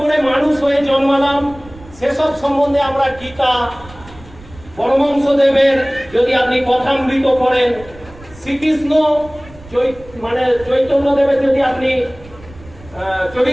মানুষ হয়ে জন্মালাম, সেসব সম্বন্ধে আমরা গীতা, পরমহংসদেবের যদি আপনি কথামৃত পড়েন, শ্রীকৃষ্ণ মানে চৈতন্যদেবের যদি আপনি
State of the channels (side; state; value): right; noise; rumble, 20 dB below the sound